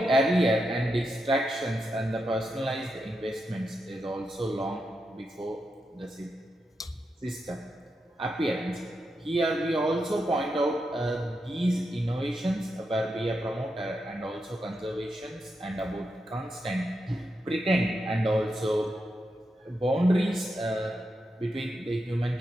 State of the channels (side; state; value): both; normal; correlation 0.86